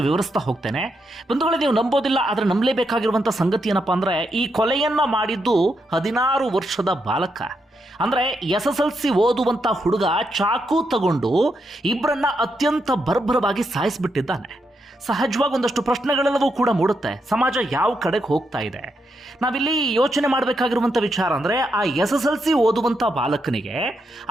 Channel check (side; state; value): both; normal; correlation 0.81